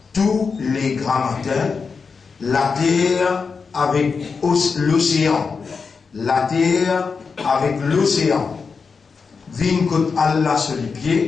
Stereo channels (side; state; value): right; quieter; 5.2 dB